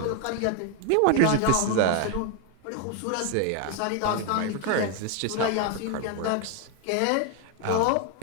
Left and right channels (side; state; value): both; different; correlation 0.01